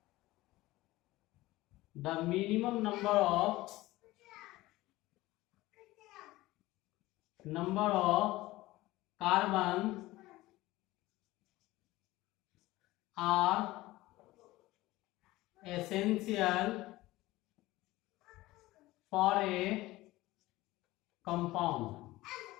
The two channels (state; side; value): quieter; right; 18.3 dB